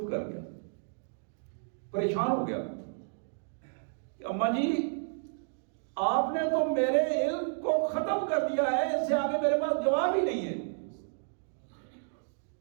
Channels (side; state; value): left; silent; digital silence